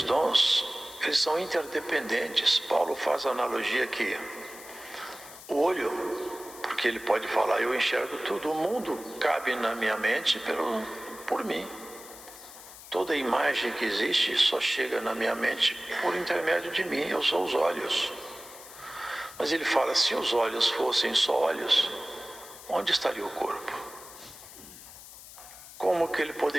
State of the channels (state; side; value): noise; left; hiss, 16 dB below the sound